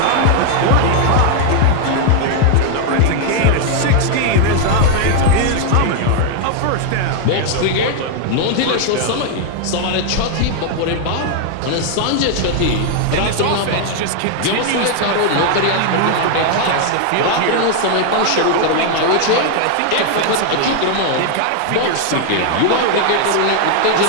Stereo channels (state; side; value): different; both; correlation 0.00